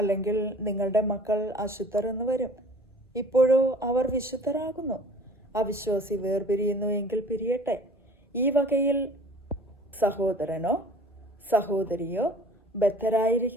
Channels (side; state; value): both; normal; correlation 0.48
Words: നിങ്ങളുടെ മക്കൾ അശുദ്ധർ എന്ന് വരും. ഇപ്പോഴോ അവർ വിശുദ്ധരാകുന്നു. അവിശ്വാസി വേർപിരിയുന്നു എങ്കിൽ പിരിയട്ടെ. ഈ വകയിൽ സഹോദരനോ സഹോദരിയോ